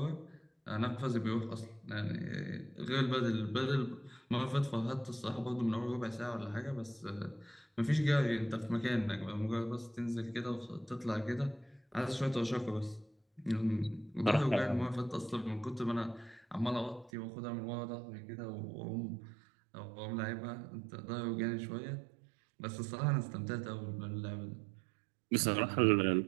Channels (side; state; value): left; drops out; at 17.1 s